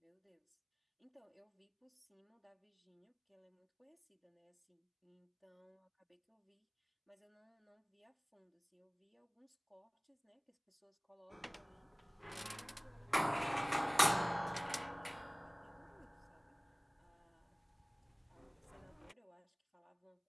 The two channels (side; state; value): both; identical; correlation 1.00